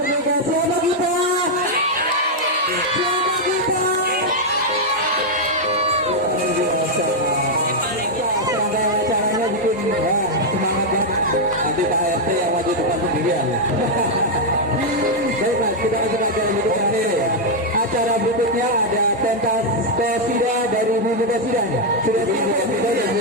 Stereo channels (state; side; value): normal; both; correlation -0.01